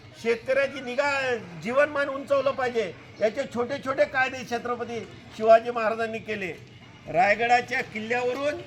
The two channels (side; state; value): both; identical; correlation 1.00